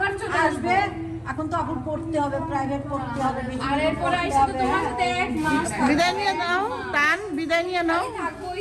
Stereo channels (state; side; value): identical; both; correlation 1.00